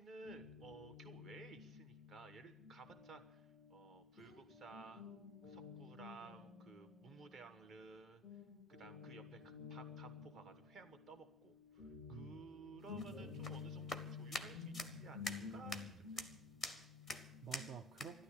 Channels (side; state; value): both; normal; correlation 0.45